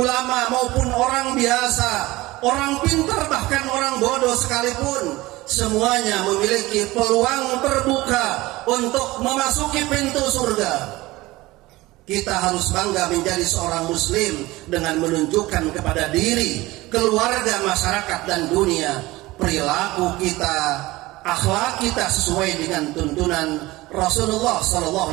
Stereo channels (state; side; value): quieter; left; 19.5 dB